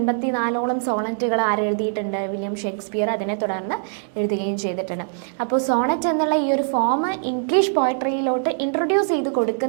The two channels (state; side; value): silent; left; digital silence